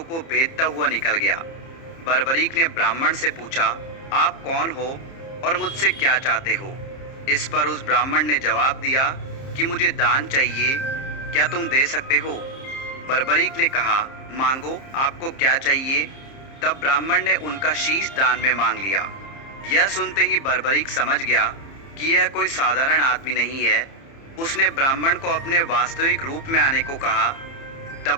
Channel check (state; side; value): late; right; 30 ms